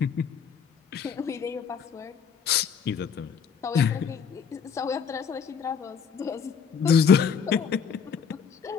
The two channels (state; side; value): quieter; right; 6.7 dB